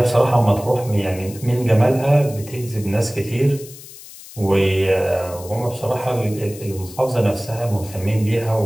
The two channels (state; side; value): noise; left; hiss, 17 dB below the sound